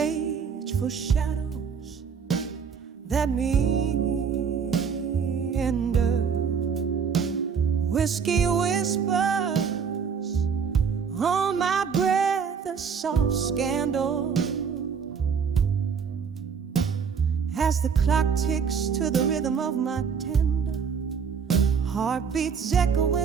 for shadows that meander. Whiskey whispers on my breath, a soft scandal. As the clock ticks to the rhythm of my tender heartbeats, echo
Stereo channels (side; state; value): left; quieter; 6.4 dB